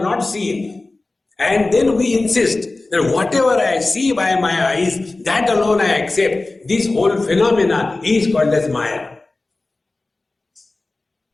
not seen, and then we insist that whatever I see by my eyes, that alone I accept. This whole phenomena is called as Maya.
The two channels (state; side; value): quieter; right; 3.2 dB